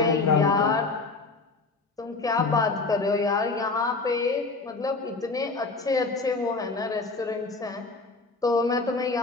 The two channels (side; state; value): right; quieter; 3.8 dB